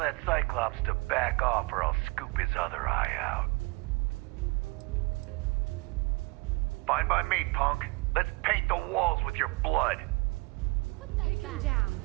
Cyclops to back off or I'll scoop his other eye out. Fine by me, punk. Let's paint the walls with your blood. Take him down.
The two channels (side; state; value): left; quieter; 27.6 dB